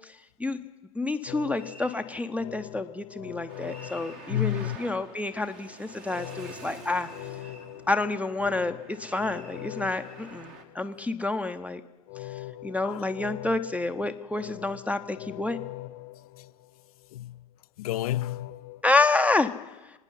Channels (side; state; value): right; quieter; 3.2 dB